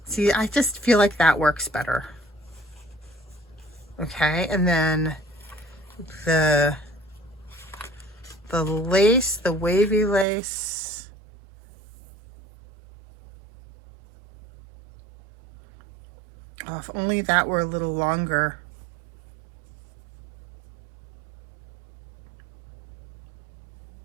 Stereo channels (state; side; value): drops out; left; at 10.2 s